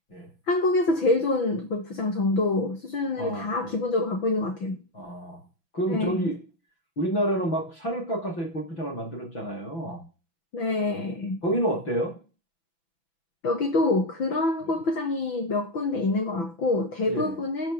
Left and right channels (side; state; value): right; late; 6.0 ms